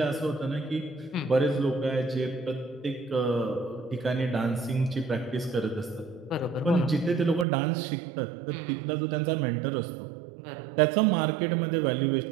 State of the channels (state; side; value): drops out; left; at 7.5 s